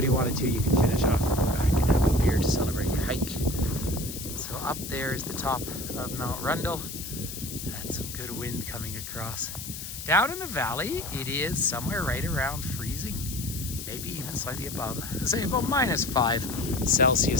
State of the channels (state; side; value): noise; left; hiss, 8 dB below the sound